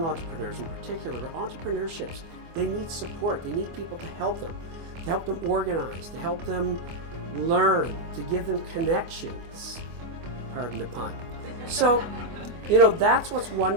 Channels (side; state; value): left; late; 24 ms